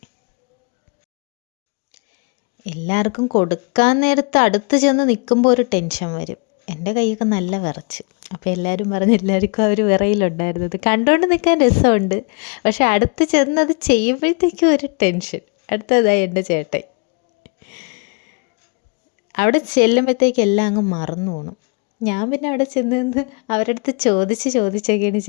എല്ലാവർക്കും കൊടുക്കാൻ നേരത്ത് അടുത്ത് ചെന്ന് നിൽക്കുമ്പോൾ ഒരു ടെൻഷൻ വരും. എൻ്റെ കൈയൊക്കെ നല്ല വിറച്ച്. അപ്പോൾ എല്ലാവരും പറഞ്ഞ് എല്ലാവർക്കും ആ ഒരു വിറയിലുണ്ടായിരുന്നത്. കണ്ടുകൊണ്ട് നിൽക്കാൻ രസമുണ്ട്, പക്ഷെ അടുത്ത് ചെന്നത് ചെയ്യുമ്പോഴത്തേക്കും ഒരു ടെൻഷൻ. അടുത്തതായി എൻ്റെ ചേട്ടൻ. അവിടെ ചെല്ലുമ്പോഴത്തേക്ക് എല്ലാം അങ്ങ് മറന്നു പോകണം. ഞാൻ പിന്നെ അവിടെ ചെന്ന് അവരുടെ അടുത്ത് ചോദിച്ചൊക്കെയാണ്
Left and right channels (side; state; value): right; quieter; 33.5 dB